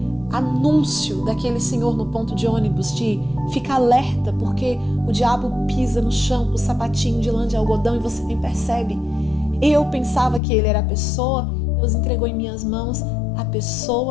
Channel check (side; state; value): right; drops out; at 10.4 s